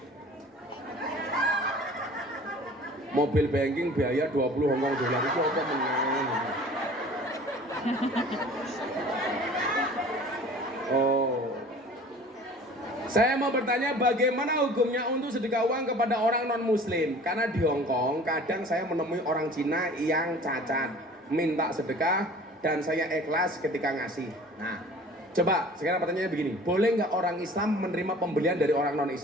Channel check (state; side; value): normal; both; correlation 0.46